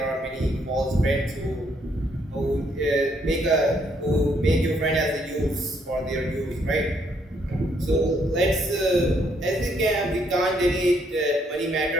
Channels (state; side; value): normal; both; correlation 0.71